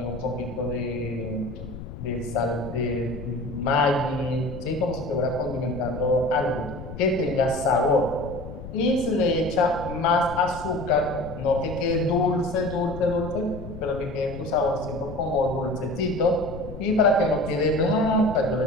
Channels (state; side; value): noise; left; rumble, 11 dB below the sound